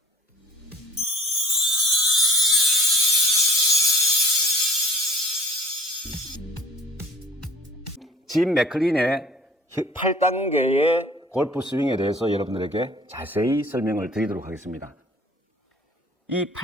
짐 맥클린의 8단계의 골프 스윙에 대해서 여러분들에게 자세히 설명을 드리도록 하겠습니다. 이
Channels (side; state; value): both; normal; correlation 0.50